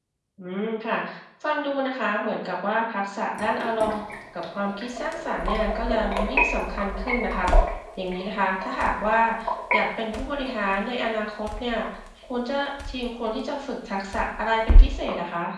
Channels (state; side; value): identical; both; correlation 1.00